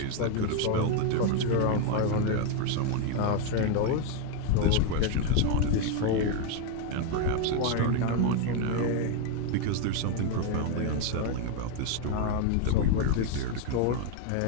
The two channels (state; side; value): different; both; correlation 0.01